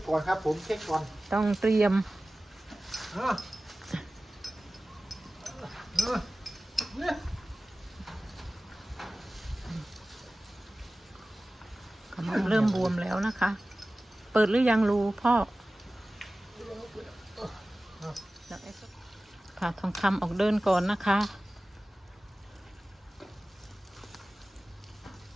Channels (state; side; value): normal; both; correlation 0.97